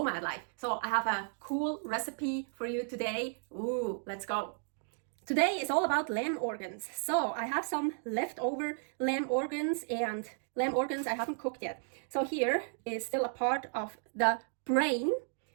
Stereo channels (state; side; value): silent; left; 55 dB below the other